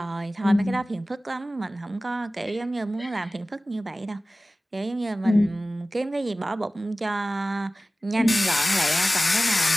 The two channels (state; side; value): normal; both; correlation 0.96